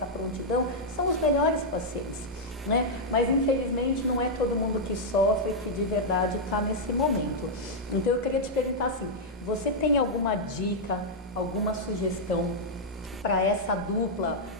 prontidão, são os melhores pacientes. Né? Mas infelizmente não é todo mundo que sofre que de verdade está nesse momento. Então eu queria te perguntar assim, você tem alguma dica, alguma sugestão para essa dupla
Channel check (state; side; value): normal; both; correlation -0.04